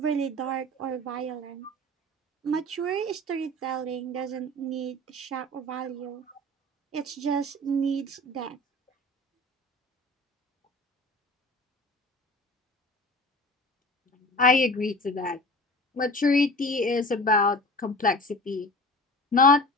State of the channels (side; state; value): both; normal; correlation 0.38